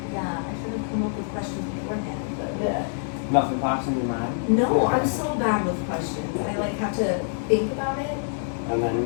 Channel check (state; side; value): silent; right; 57 dB below the other